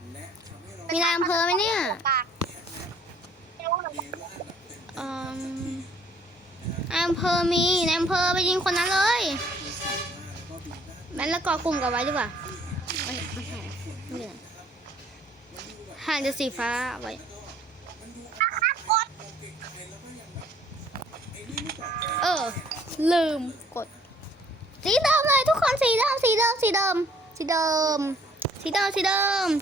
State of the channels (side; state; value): both; normal; correlation 0.60